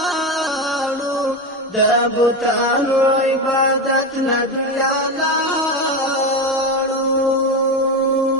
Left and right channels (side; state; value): both; normal; correlation 0.16